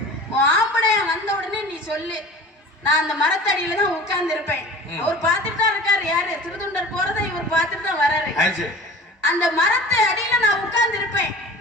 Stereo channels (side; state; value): both; normal; correlation 0.40